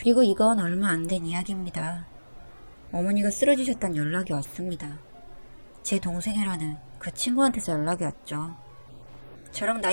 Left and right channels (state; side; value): inverted; both; correlation -1.00